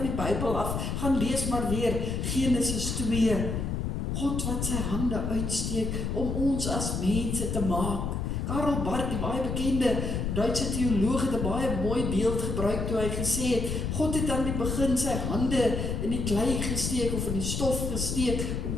die Bybel af, gaan lees maar weer Genesis 2. God wat sy hande uitsteek om ons as mense te maak. Karl Barth, die baie bekende Duitse teoloog, het 'n baie mooi beeld gebruik toe hy gesê het, God het aan die begin sy hande in die klei gesteek of in die stof gesteek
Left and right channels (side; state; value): left; noise; rumble, 2 dB below the sound